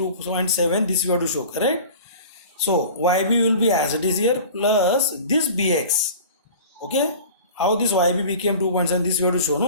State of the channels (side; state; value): both; inverted; correlation -0.40